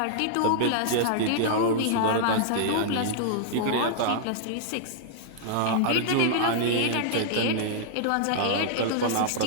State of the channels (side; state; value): both; different; correlation -0.01